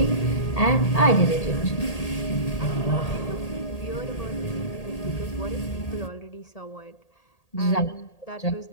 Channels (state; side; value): late; right; 1.8 ms